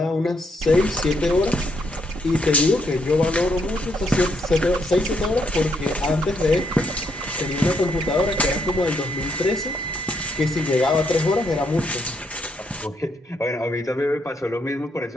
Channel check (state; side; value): normal; both; correlation 0.75